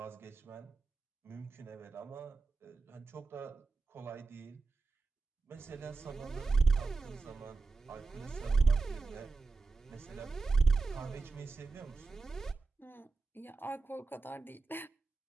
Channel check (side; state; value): left; quieter; 4.0 dB